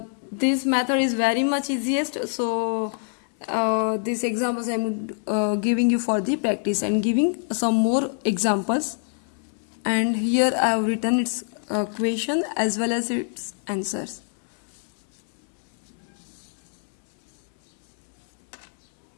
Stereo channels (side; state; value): right; silent; 61 dB below the other